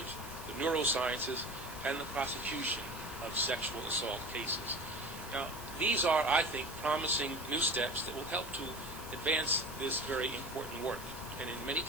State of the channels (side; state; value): right; noise; hiss, 14 dB below the sound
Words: the neurosciences, and the prosecution of sexual assault cases. Now, these are, I think, promising new steps that will help to advance this very important work, and in many